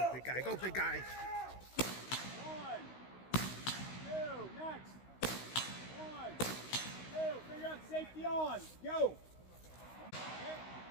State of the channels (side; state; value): right; late; 16 ms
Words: big guy. Go, big guy. 1, 2, next. 1, 2, figure out safety on. Go. Okay.